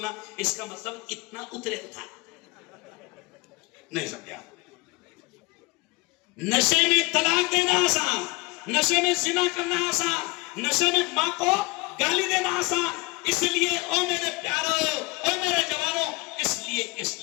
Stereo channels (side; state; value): right; quieter; 25.9 dB